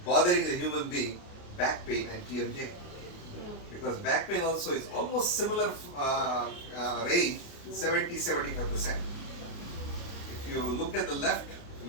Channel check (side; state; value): right; late; 28 ms